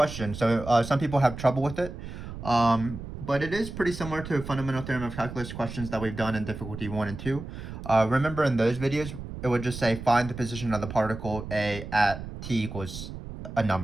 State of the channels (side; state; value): right; noise; rumble, 10 dB below the sound